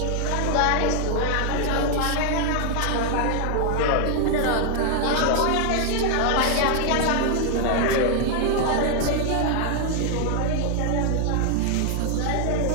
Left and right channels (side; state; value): both; different; correlation 0.00